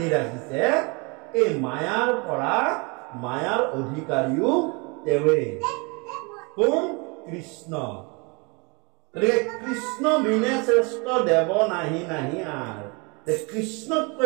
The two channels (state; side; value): quieter; left; 30.0 dB